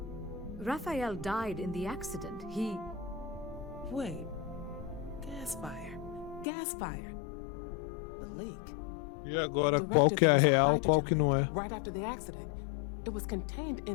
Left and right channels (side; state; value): right; drops out; at 6.5 s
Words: Raphael died in the accident. He... Wait. Gas fire. Gas fire. The leak. E agora, qual que é a real, qual que não é? Right after the accident. It was contained